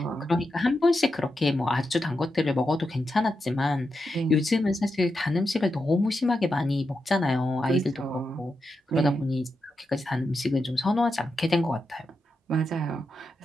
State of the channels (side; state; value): both; normal; correlation 0.87